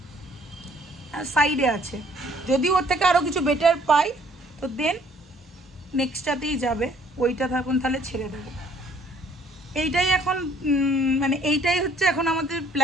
সাইডে আছে। যদি ওর থেকে আরও কিছু বেটার পাই তো দেন নেক্সটটাতেই যাবে, ওইটা থাকুন তাহলে ছেড়ে দেবো। এইটাই এখন মানে এইটাই হচ্ছে এখন আমাদের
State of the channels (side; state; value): both; normal; correlation 0.61